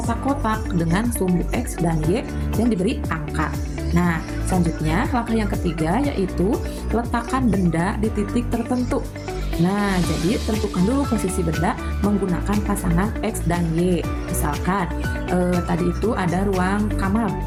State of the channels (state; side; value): identical; both; correlation 1.00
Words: dengan sumbu X dan Y yang diberi angka. Nah, selanjutnya langkah yang ketiga yaitu letakkan benda di titik tertentu. Nah, jadi tentukan dulu posisi benda menggunakan pasangan X dan Y. Misalkan tadi itu ada ruang kamar